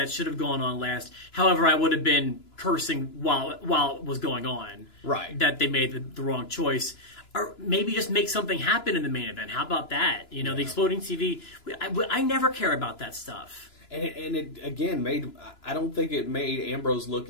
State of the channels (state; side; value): late; right; 2.9 ms